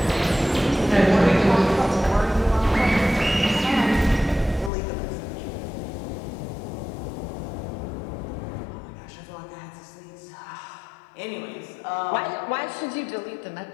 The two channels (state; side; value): drops out; right; at 4.7 s